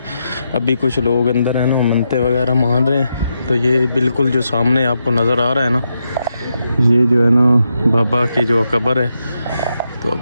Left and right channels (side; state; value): both; inverted; correlation -0.84